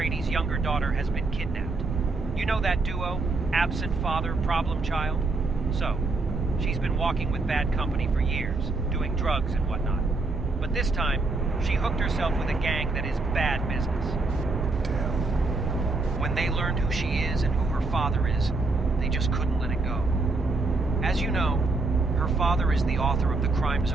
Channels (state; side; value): quieter; left; 3.4 dB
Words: younger daughter, has been kidnapped. You know that duo? Absent father, problem child? So, she's been walking with bad company for years, doing drugs and whatnot. But this time, she hooked herself with a gang that is bad business. Damn. When they learned who she is and who her father is, they just couldn't let it go. As you know, her father is the author of the Crime